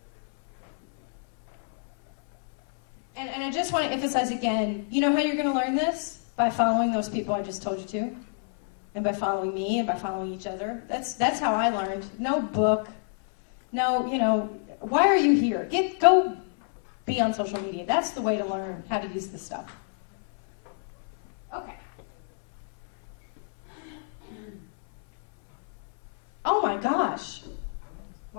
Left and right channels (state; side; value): silent; right; 60 dB below the other